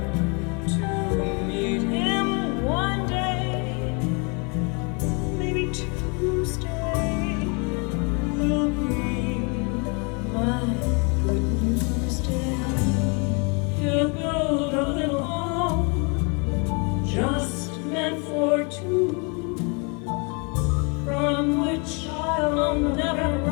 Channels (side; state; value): right; quieter; 33.7 dB